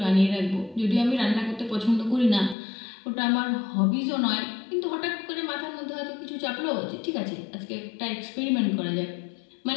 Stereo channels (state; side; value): drops out; right; at 2.6 s